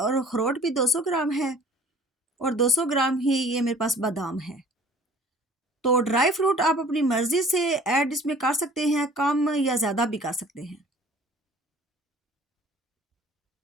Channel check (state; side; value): normal; both; correlation 0.50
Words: अखरोट भी 200 ग्राम है और 200 ग्राम ही ये मेरे पास बादाम है। तो ड्राई फ्रूट आप अपनी मर्जी से ऐड इसमें कर सकते हैं, कम या ज़्यादा भी कर सकते हैं।